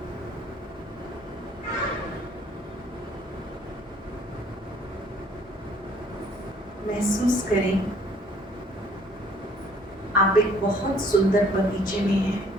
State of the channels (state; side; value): normal; both; correlation 0.58